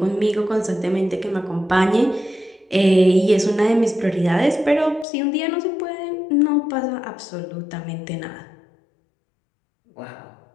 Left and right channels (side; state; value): right; drops out; at 5.1 s